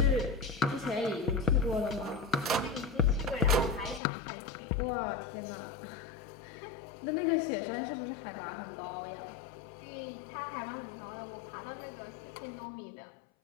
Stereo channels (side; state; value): right; drops out; at 4.0 s